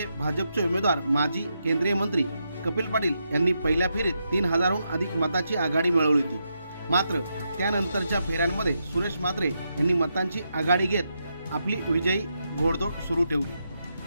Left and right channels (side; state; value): both; inverted; correlation -0.83